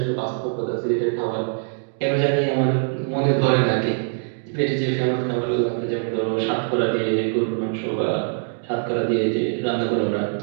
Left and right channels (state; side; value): silent; left; digital silence